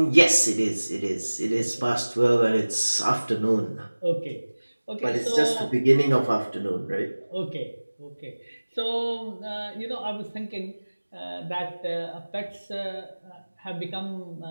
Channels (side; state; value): both; inverted; correlation -1.00